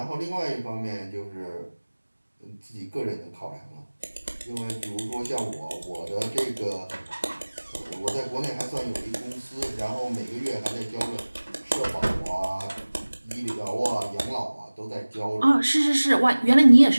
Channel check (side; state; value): both; inverted; correlation -1.00